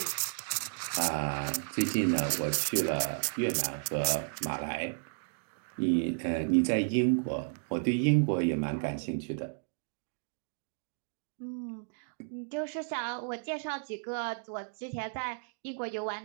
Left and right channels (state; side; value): silent; left; digital silence